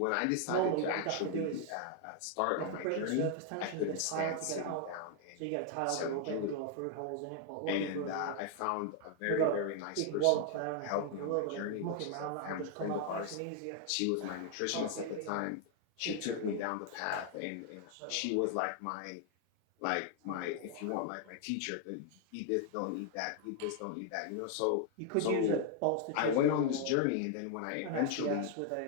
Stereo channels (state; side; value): different; both; correlation 0.00